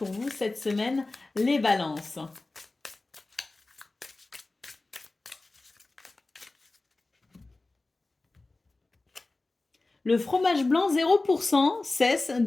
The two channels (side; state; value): right; quieter; 3.2 dB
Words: vous cette semaine, les balances? Le fromage blanc 0% cesse